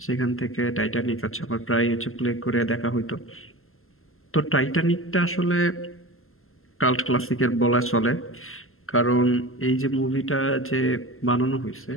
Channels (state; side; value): late; right; 0.62 ms